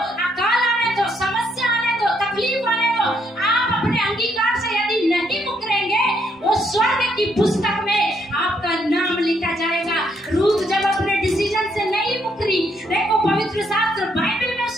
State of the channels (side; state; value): both; normal; correlation 0.73